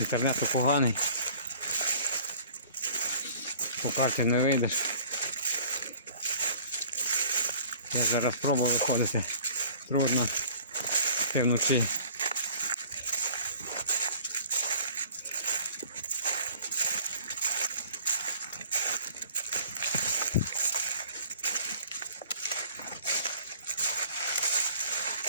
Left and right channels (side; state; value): both; inverted; correlation -0.51